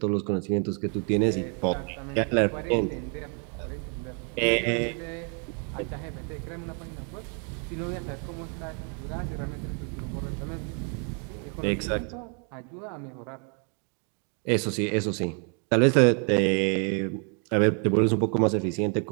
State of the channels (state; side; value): quieter; left; 38.9 dB